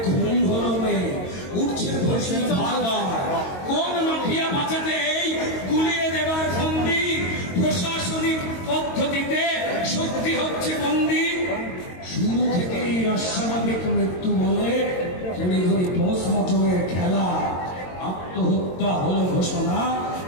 খুন হলো মেয়ে উঠছে প্রশ্ন বারবার। কোন মাফিয়া বাঁচাতে এই গুলিয়ে দেবার ফন্দি, প্রশাসনিক পদ্ধতিতে শক্তি হচ্ছে বন্দী। শুরু থেকেই অস্বাভাবিক মৃত্যু বলে তড়িঘড়ি পোস্টমর্টমের খেলা, আত্মহত্যা হলো ঘোষণা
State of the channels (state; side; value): late; right; 22 ms